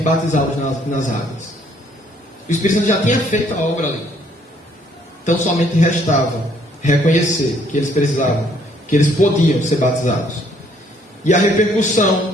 batizá-los nas águas. O Espírito Santo já tinha feito a obra ali. Tão somente restava reconhecer que eles precisavam, que eles podiam ser batizados. E a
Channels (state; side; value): normal; both; correlation 0.65